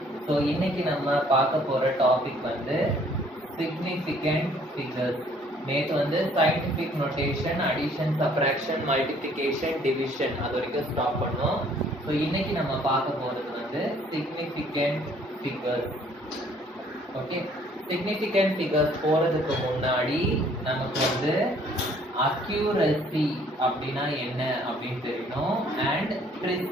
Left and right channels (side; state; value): both; normal; correlation 0.60